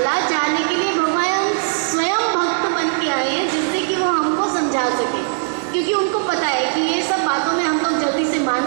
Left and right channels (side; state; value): left; silent; digital silence